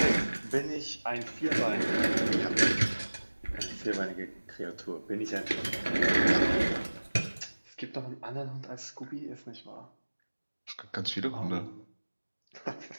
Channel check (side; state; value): both; inverted; correlation -1.00